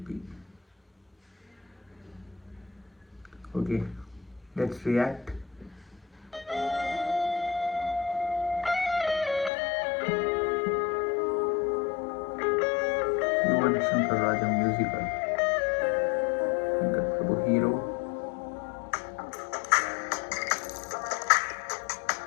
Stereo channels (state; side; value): drops out; right; at 9.5 s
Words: Okay, let's react. Yuvan Shankar Raja musical. Shankar Prabhu hero.